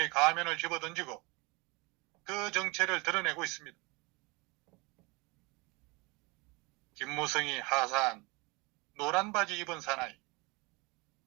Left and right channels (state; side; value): quieter; left; 26.5 dB